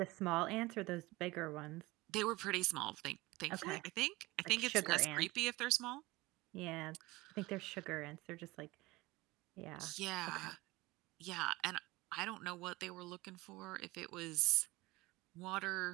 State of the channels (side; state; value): left; quieter; 20.9 dB